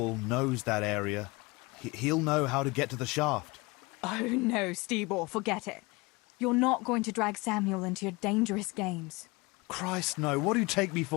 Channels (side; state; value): right; quieter; 24.8 dB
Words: knows that area. He'll know how to get to the shaft. Oh no, Stebor, forget it. You're not going to drag Samuel into your dangerous games. Christ, no. What do you take me